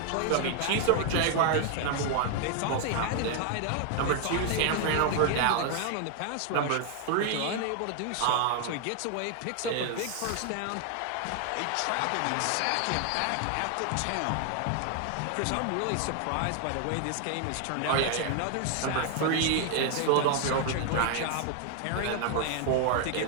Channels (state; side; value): different; both; correlation 0.00